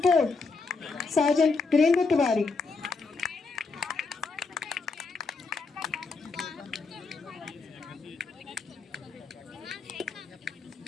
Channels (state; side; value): quieter; right; 4.2 dB